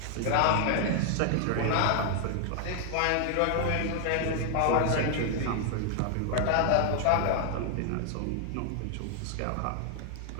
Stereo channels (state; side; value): different; both; correlation 0.00